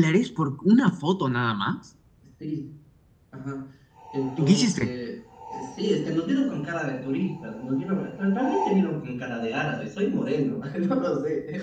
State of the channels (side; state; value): both; identical; correlation 1.00